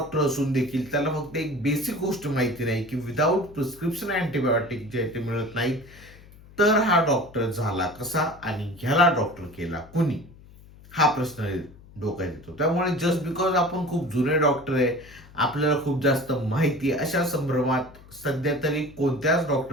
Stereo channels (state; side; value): noise; left; hum, 22 dB below the sound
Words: असून देखील त्याला फक्त एक बेसिक गोष्ट माहिती नाही की विदाऊट प्रिस्क्रिप्शन अँटिबायोटिक जे आहे ते मिळत नाहीत. तर हा डॉक्टर झाला कसा आणि ह्याला डॉक्टर केला कुणी? हा प्रश्न डोक्यात येतो. त्यामुळे जस्ट बिकॉज आपण खूप जुने डॉक्टर आहे, आपल्याला खूप जास्त माहिती आहे, अशा संभ्रमात सध्या तरी कोणत्याच